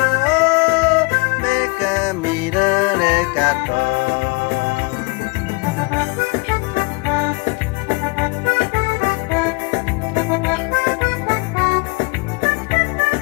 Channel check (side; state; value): right; quieter; 28.9 dB